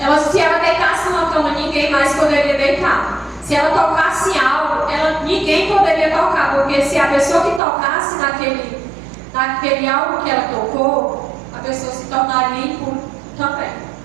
Se ela deitasse numa cama, ninguém mais poderia deitar. Se ela tocasse algo, ninguém poderia tocar, porque se a pessoa que tocasse naquele algo que ela tocou, a pessoa se tornaria impura também.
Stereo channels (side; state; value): left; drops out; at 7.6 s